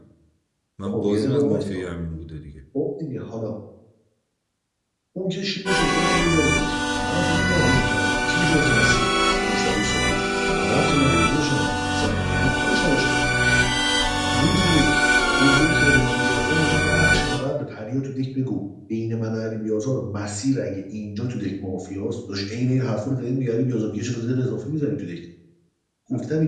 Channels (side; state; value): both; identical; correlation 1.00